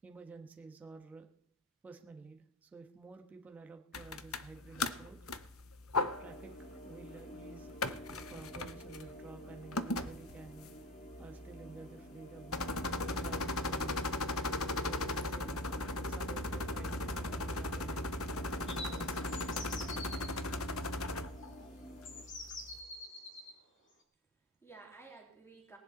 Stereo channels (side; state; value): both; normal; correlation 0.30